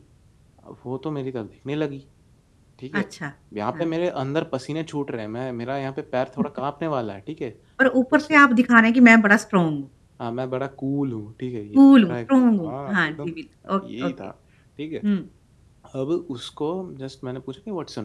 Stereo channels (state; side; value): identical; both; correlation 1.00